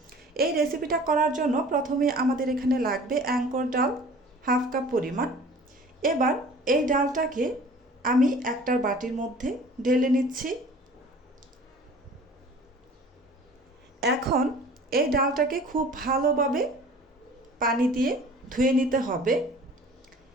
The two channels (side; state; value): both; normal; correlation 0.46